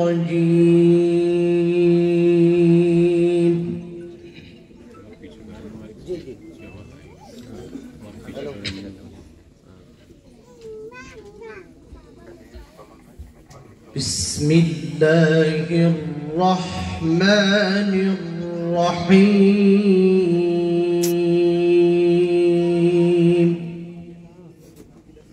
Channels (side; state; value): both; identical; correlation 1.00